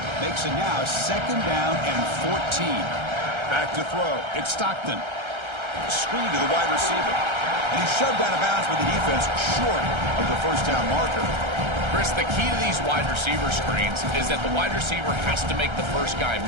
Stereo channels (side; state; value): left; late; 1.3 ms